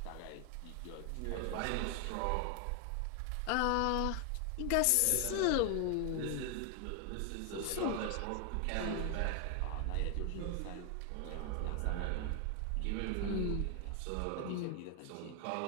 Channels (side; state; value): both; different; correlation 0.00